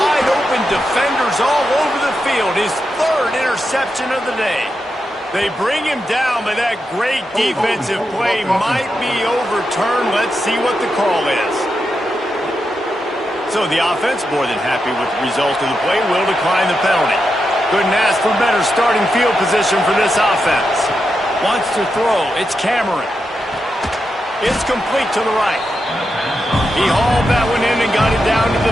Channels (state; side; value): normal; both; correlation 0.87